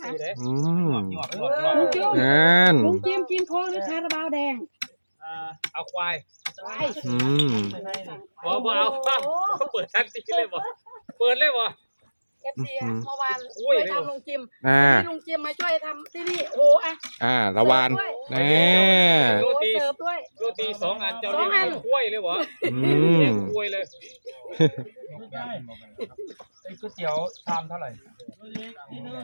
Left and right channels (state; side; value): inverted; both; correlation -1.00